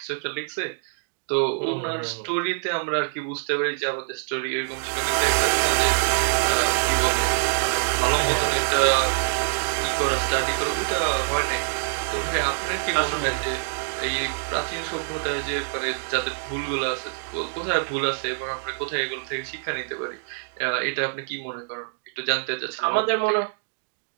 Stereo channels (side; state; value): left; silent; digital silence